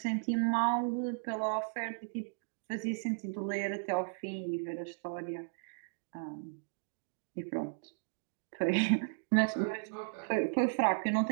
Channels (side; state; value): left; silent; digital silence